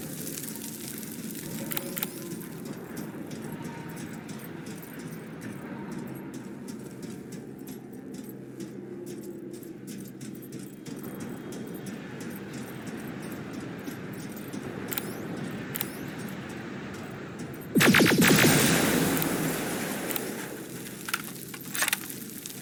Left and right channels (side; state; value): both; identical; correlation 1.00